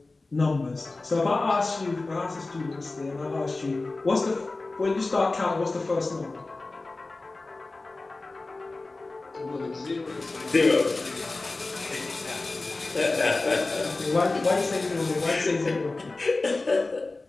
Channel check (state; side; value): quieter; right; 3.3 dB